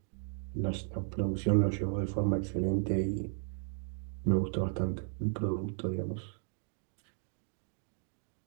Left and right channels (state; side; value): silent; left; 54 dB below the other